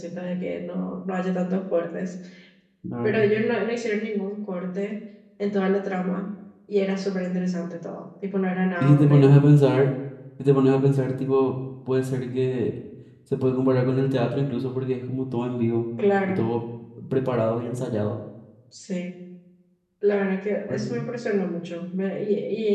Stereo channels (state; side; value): identical; both; correlation 1.00